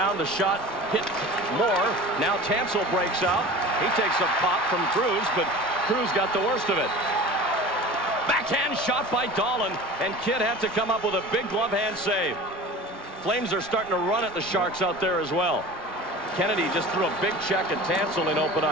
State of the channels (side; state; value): both; normal; correlation 0.37